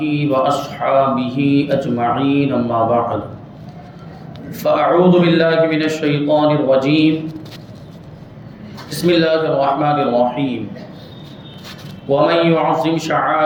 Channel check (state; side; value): identical; both; correlation 1.00